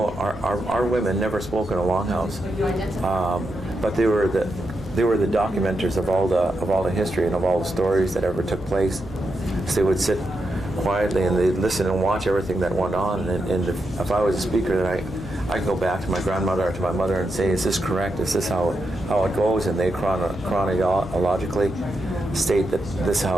our women never spoke in a longhouse, but they were the documenters of all the history and of all the stories that ever took place. So they would sit quietly and they'd listen and watch everything that went on. And if I was a speaker, then I could go back to my grandmother or to my mother and say, "Is this correct? Is this how it goes?" And they chronologically state that this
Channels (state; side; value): noise; right; hum, 17 dB below the sound